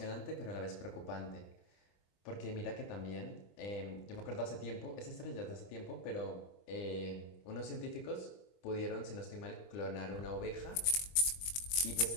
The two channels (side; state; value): right; late; 22 ms